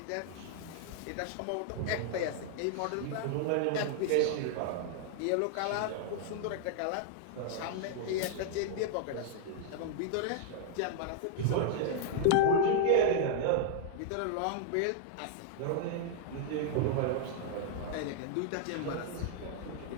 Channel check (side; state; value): both; different; correlation -0.01